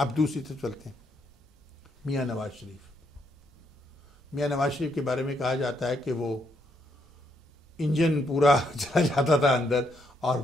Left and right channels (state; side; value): normal; both; correlation 0.75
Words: دوسری طرف چلتے ہیں، میاں نواز شریف۔ میاں نواز شریف کے بارے میں کہا جاتا ہے کہ وہ انجن پورا چلا جاتا تھا اندر، اور